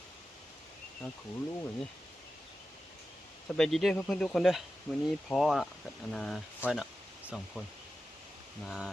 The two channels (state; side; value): normal; both; correlation 0.92